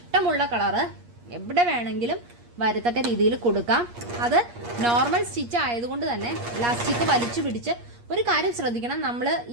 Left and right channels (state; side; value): late; left; 8.5 ms